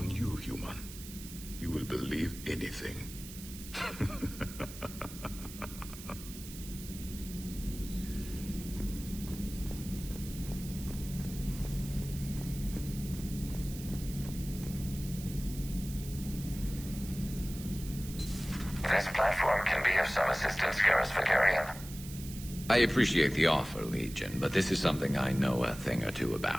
you, human. You will believe anything. This platform can be of some assistance, Garrus Vakarian. I appreciate the offer, Legion, but this is something I know a thing or two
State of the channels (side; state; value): right; noise; hiss, 13 dB below the sound